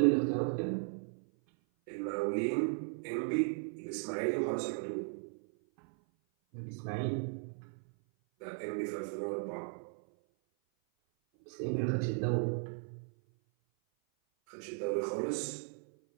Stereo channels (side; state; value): left; silent; 54 dB below the other